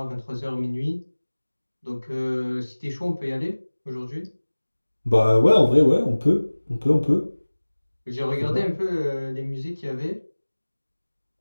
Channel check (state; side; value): inverted; both; correlation -1.00